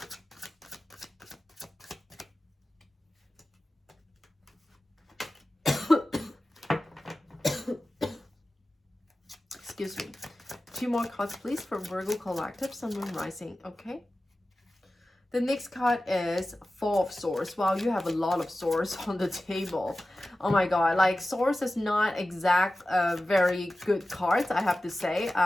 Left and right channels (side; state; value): both; normal; correlation 0.95